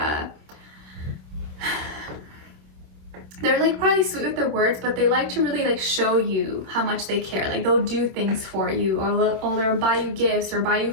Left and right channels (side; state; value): left; late; 26 ms